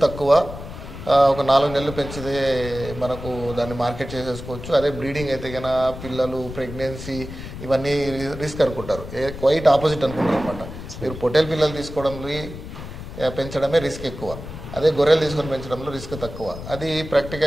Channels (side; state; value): left; noise; rumble, 11 dB below the sound